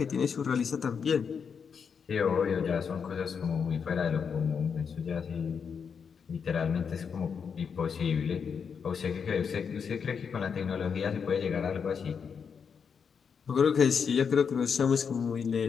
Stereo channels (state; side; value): quieter; right; 6.5 dB